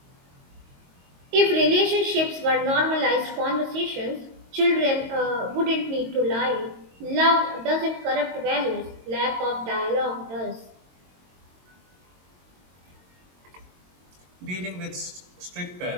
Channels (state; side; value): late; left; 22 ms